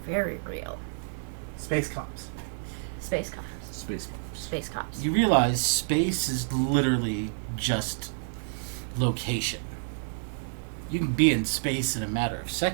very real. Space cops. Space cops. Space Force. Space cops. You realize space is literally just location. You can be in space in a matter of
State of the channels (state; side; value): silent; left; 59 dB below the other